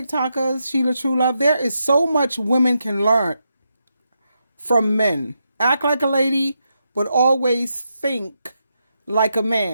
SheilaTruelove. There is so much women can learn from men. Act like a lady, but always think like a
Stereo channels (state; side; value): inverted; both; correlation -0.84